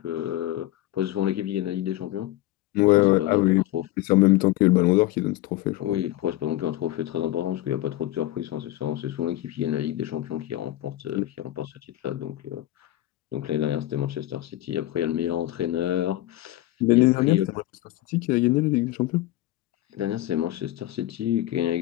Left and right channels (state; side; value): quieter; right; 15.4 dB